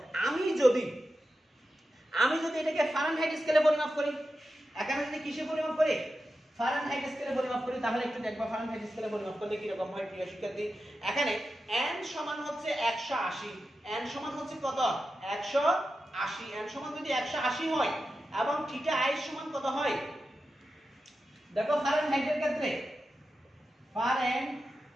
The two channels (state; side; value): normal; both; correlation 0.91